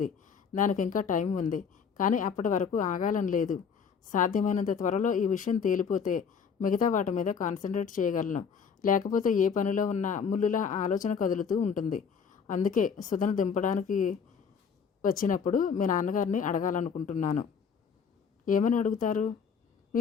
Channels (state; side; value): quieter; right; 6.5 dB